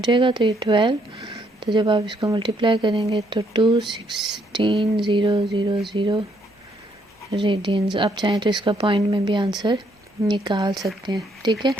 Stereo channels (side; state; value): both; normal; correlation 0.71